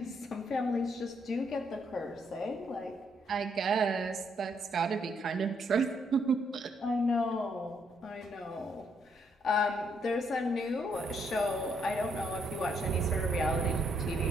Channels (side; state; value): both; normal; correlation 0.73